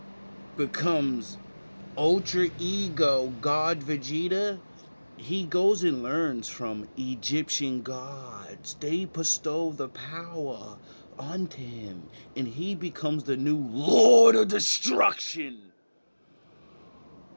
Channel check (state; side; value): inverted; both; correlation -1.00